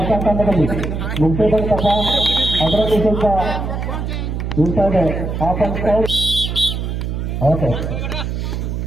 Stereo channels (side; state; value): right; noise; hum, 3 dB below the sound